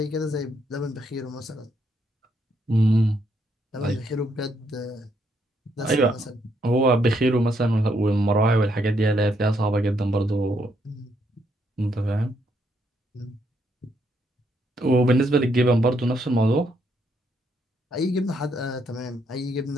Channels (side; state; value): both; normal; correlation 0.74